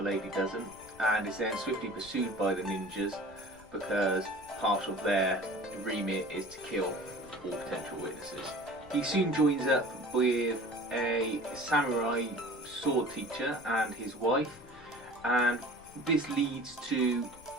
lady doesn't, and is then swiftly pursued by the ninjas because part of their remit is to kill all potential witnesses. He soon joins up with a samurai sword teacher and his wife, and this leads to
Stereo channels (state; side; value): noise; left; rumble, 24 dB below the sound